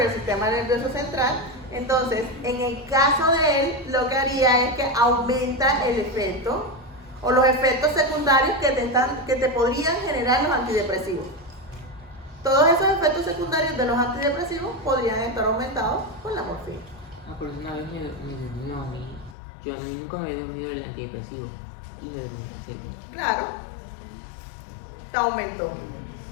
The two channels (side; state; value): right; drops out; at 19.4 s